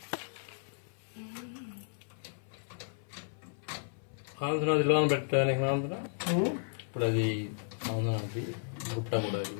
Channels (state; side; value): silent; right; 55 dB below the other